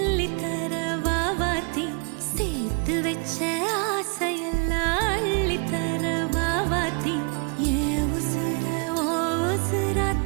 வாவாத்தி சேர்த்து வச்ச ஆசையெல்லாம் அள்ளித்தர வாவாத்தி ஏ உசுர ஓ உசுரா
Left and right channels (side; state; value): left; quieter; 37.4 dB